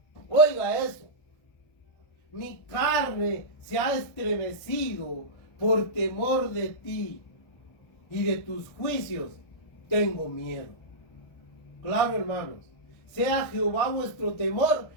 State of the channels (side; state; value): right; late; 1.6 ms